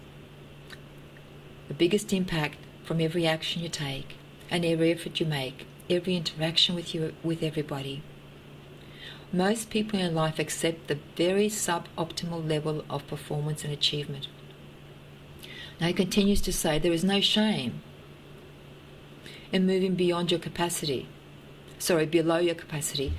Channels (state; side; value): identical; both; correlation 1.00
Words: the biggest impact from every action you take and every effort you make, every interaction with everybody. Most people in life accept the very suboptimal level of performance and achievement. Now he continues to say there is no shame in moving below your capacity,